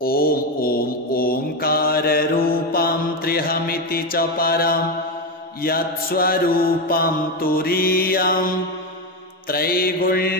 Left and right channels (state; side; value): normal; both; correlation 0.12